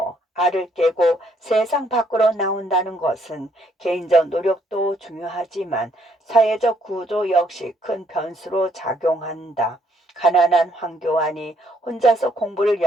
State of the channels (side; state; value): both; normal; correlation 0.69